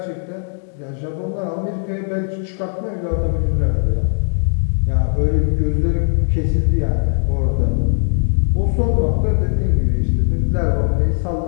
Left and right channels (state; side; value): silent; right; 67 dB below the other